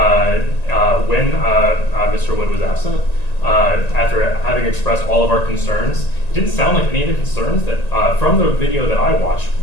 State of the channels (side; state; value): right; late; 1.9 ms